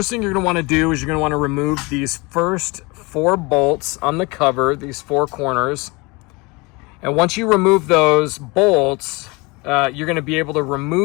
thing you're going to want to do is you're going to want to remove these first 4 bolts on the cover, these 4 corners. And once you remove those bolts, you're going to be able to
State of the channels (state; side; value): quieter; right; 26.1 dB